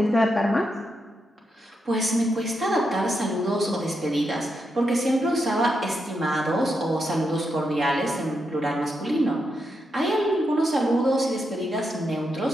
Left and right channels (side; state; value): both; normal; correlation 0.83